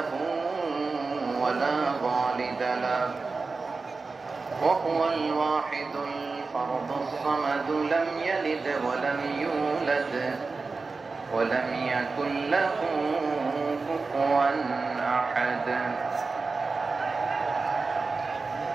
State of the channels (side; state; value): left; quieter; 4.1 dB